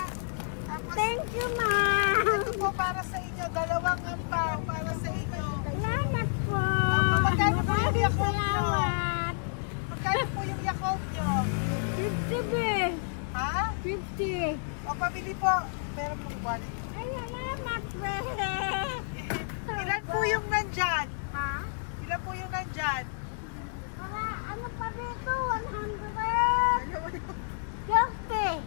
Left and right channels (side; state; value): right; silent; digital silence